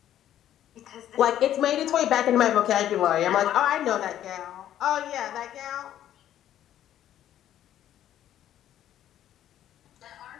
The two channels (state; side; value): quieter; right; 11.6 dB